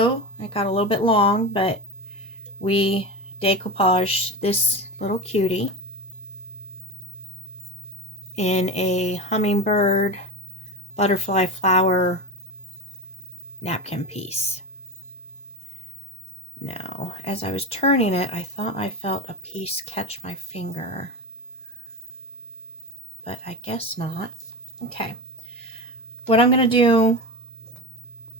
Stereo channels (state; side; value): normal; both; correlation 0.25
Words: it got a little bit long, but we decoupaged this little cutie in a hummingbird butterfly flower napkin piece. Now, as I was turning it, I thought I felt a piece catch my finger, but I guess not. Okay, what I'm going to do